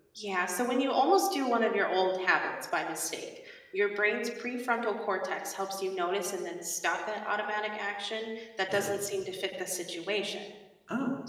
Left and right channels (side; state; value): both; identical; correlation 1.00